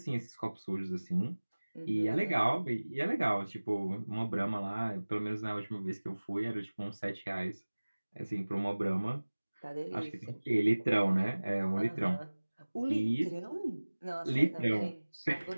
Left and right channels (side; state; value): both; inverted; correlation -1.00